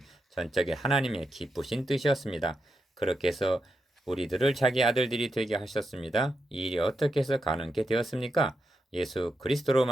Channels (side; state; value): both; normal; correlation 0.85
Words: 전적인 하나님의 기쁘신 뜻이었습니다. 그렇게 해서 우리들을 자기 아들들이 되게 하셨습니다. 이 일이 어떻게 해서 가능하게 되었습니까? 예수 그리스도로